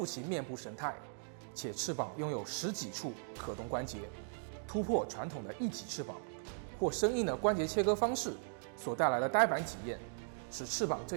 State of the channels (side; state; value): left; silent; digital silence